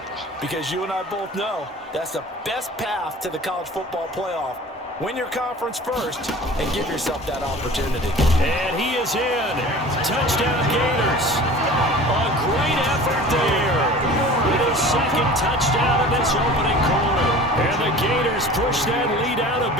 because you and I both know that's the best path to the college football playoff. Win your conference first and give yourself that opportunity. And he is in. Touchdown, Gators. A great effort there. With his second touchdown in this opening quarter. And the Gators push that lead out a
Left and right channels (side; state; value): both; normal; correlation 0.42